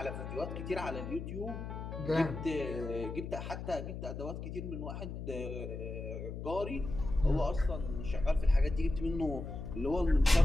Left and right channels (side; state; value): left; noise; hum, 7 dB below the sound